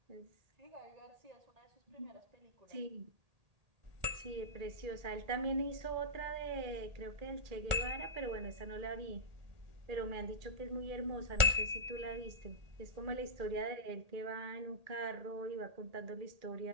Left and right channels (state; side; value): late; left; 1.8 ms